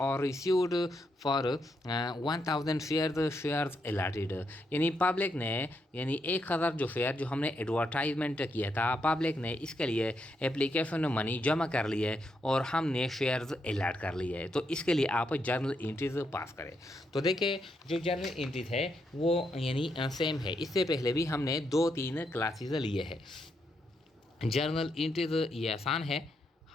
रिसीव्ड फॉर 1000 शेयर्स अलॉटेड, यानी पब्लिक ने यानी 1000 जो शेयर जो हमने एडवर्टाइजमेंट किया था पब्लिक ने इसके लिए एप्लीकेशन मनी जमा कर ली है और हमने शेयर्स अलॉट कर लिए है, तो इसके लिए आप जर्नल एंट्रीज पास करें। तो देखिए जो जर्नल एंट्रीज है वो यानी सेम है, इससे पहले भी हमने 2-3 क्लासेस लिए हैं। जर्नल एंट्रीज ये आसान है,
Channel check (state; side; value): normal; both; correlation 0.80